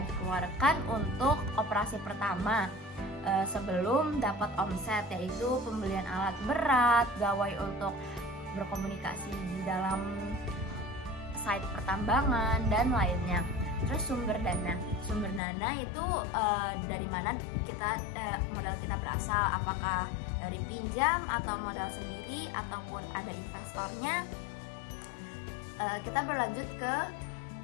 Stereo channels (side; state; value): right; drops out; at 15.4 s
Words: dikeluarkan untuk operasi pertama sebelum dapat omset, yaitu pembelian alat berat, gawai untuk berkomunikasi di dalam site pertambangan, dan lainnya. Terus sumber dana itu dari mana modal kita berasal, apakah dari pinjam atau modal sendiri ataupun ada investornya. Kita berlanjut ke